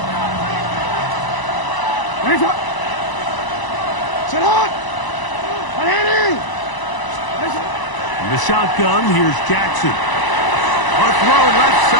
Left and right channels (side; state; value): right; late; 1.0 ms